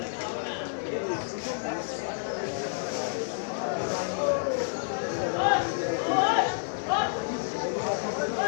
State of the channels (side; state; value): right; silent; digital silence